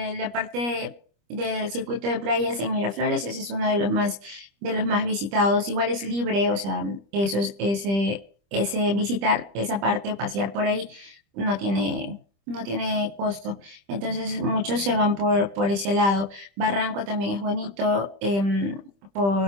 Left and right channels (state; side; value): late; left; 25 ms